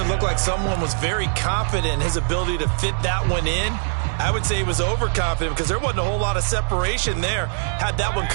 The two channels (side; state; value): left; silent; digital silence